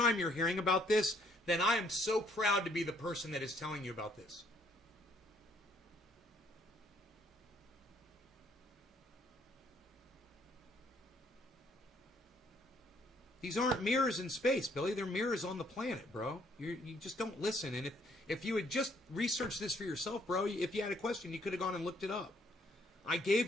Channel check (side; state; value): both; normal; correlation 0.66